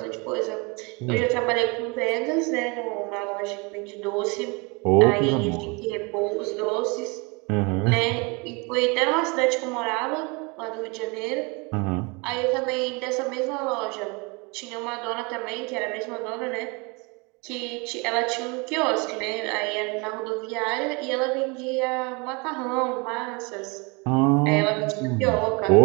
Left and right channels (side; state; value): left; quieter; 29.2 dB